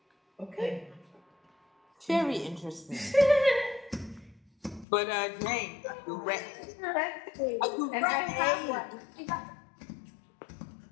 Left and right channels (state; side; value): drops out; right; at 4.9 s